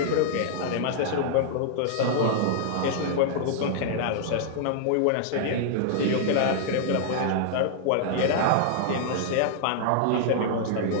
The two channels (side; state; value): both; different; correlation -0.01